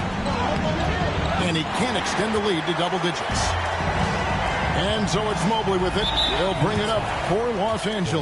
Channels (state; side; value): identical; both; correlation 1.00